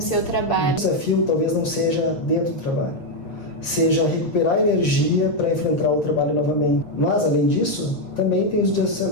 seu trabalho? O desafio talvez não seja dentro do trabalho, seja recuperar energia para enfrentar o trabalho novamente. Mas, além disso, também tem os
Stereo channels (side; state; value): right; late; 7.3 ms